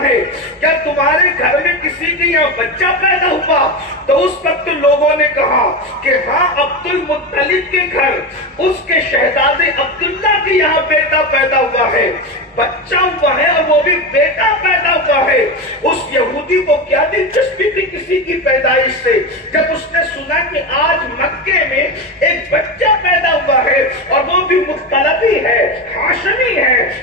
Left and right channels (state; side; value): normal; both; correlation 0.19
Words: ہے کیا تمہارے گھر میں کسی کے یہاں بچہ پیدا ہوا، تو اس وقت لوگوں نے کہا کہ ہاں عبد المطلب کے گھر اس کے شہزادے عبداللہ کے یہاں بیٹا پیدا ہوا ہے، بچہ ہوا ہے اور وہ بھی بیٹا پیدا ہوا ہے۔ اس یہودی کو کیا دلچسپی تھی کسی کی پیدائش سے؟ جب اس نے سنا کہ آج مکے میں ایک بچہ پیدا ہوا ہے اور وہ بھی مختلفی ہے، ہاشمی ہے،